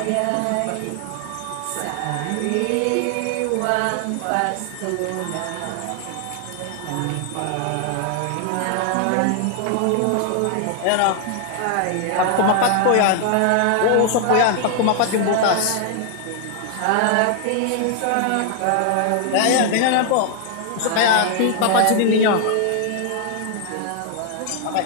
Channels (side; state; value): both; different; correlation 0.00